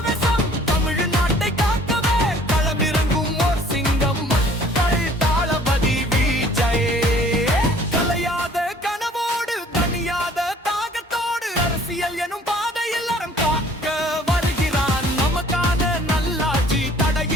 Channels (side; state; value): both; normal; correlation 0.55